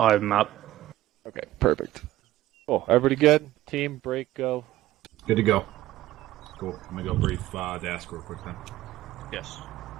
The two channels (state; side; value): quieter; left; 15.2 dB